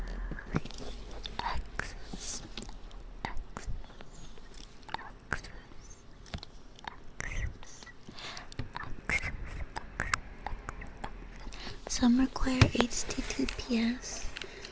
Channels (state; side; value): identical; both; correlation 1.00